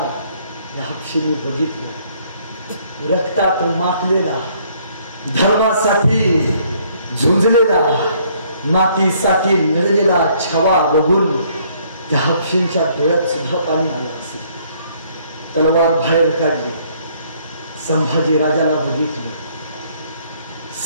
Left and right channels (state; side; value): inverted; both; correlation -0.64